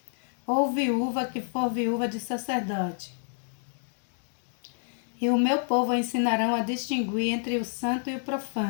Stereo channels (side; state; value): right; silent; digital silence